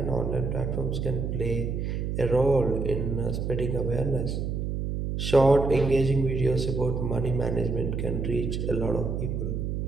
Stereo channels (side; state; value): right; noise; hum, 2 dB below the sound